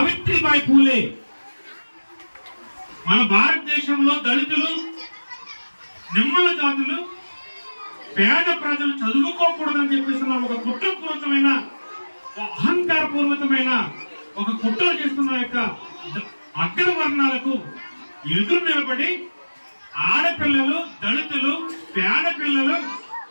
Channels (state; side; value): inverted; both; correlation -1.00